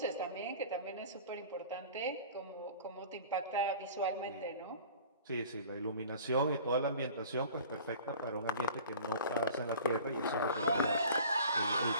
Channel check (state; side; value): inverted; both; correlation -0.44